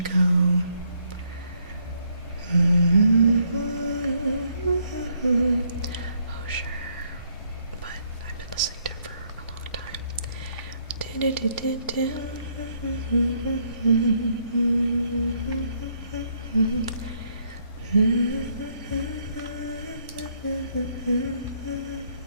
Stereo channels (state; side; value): inverted; both; correlation -0.71